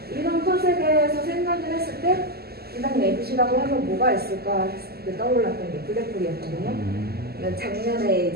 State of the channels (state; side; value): late; left; 0.46 ms